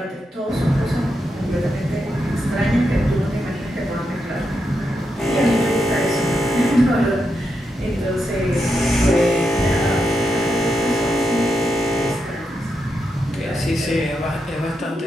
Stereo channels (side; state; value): both; normal; correlation 0.84